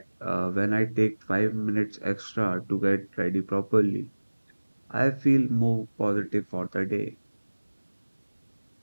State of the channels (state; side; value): inverted; both; correlation -1.00